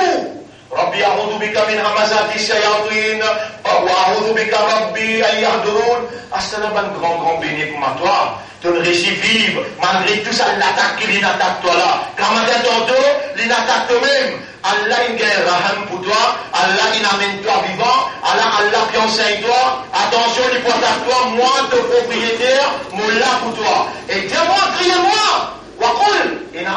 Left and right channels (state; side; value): identical; both; correlation 1.00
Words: Rabbi a'udhu bika min hamazati shayatin, wa a'udhu bika Rabbi an yahdurun. Ah, c'est un grand béni pour toi. Tu ne réussis vivre, malgré tout ça, l'attaque qui attaque toi là. Quand matin tantôt, il attaque toi-même. Allah il gagne raham pour toi, Allah il amène toi vivant, Allah qui enseigne toi, attention, il porte à toi, moi, ton propriétaire, mon là pour toi. Et dis-moi, criez-moi,